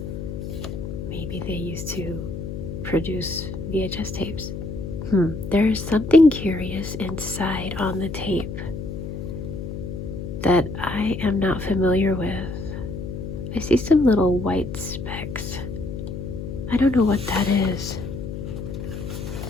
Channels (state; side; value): noise; left; hum, 6 dB below the sound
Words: Maybe they used to produce VHS tapes. There's something curious inside on the tape that I am not familiar with. I see some little white specks. I don't know what that is.